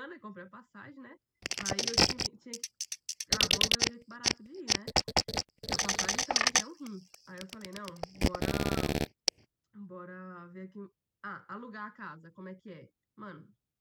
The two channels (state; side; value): identical; both; correlation 1.00